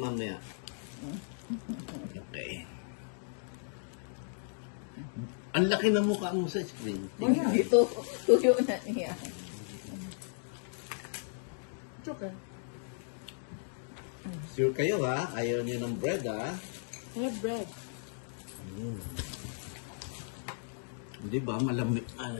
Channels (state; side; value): silent; right; digital silence